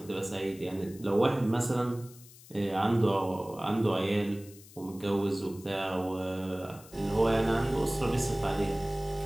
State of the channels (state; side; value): noise; left; hiss, 21 dB below the sound